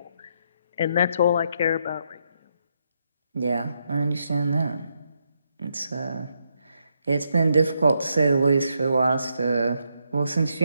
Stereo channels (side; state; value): both; inverted; correlation -0.79